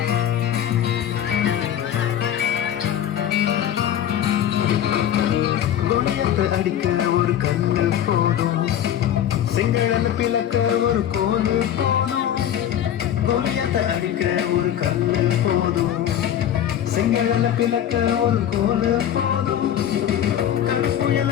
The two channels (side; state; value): right; quieter; 10.5 dB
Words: அடிக்க ஒரு கண்ணு போதும், செங்கடன பிளக்க ஒரு கோலு போதும். கோலியத்தை அடிக்க ஒரு கண்ணு போதும், செங்கடன பிளக்க ஒரு கோலு போதும். கடற்புயல